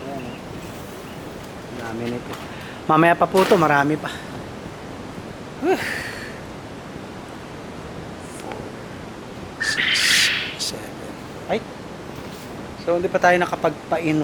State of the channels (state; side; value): identical; both; correlation 1.00